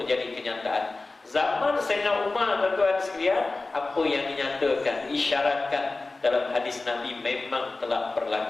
menjadi kenyataan. Zaman Sayyidina Umar tuan-tuan sekalian, apa yang dinyatakan, diisyaratkan dalam hadis Nabi memang telah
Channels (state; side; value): quieter; right; 3.4 dB